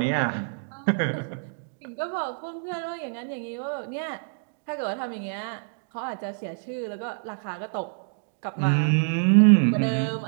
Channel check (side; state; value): left; silent; digital silence